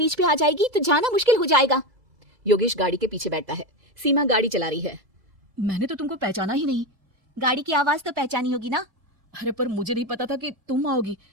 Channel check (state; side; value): late; left; 2.0 ms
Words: पे आ जाएगी तो जाना मुश्किल हो जाएगा। योगेश गाड़ी के पीछे बैठता है। सीमा गाड़ी चला रही है। मैंने तो तुमको पहचाना ही नहीं। गाड़ी की आवाज तो पहचानी होगी ना। अरे पर मुझे नहीं पता था कि तुम आओगी।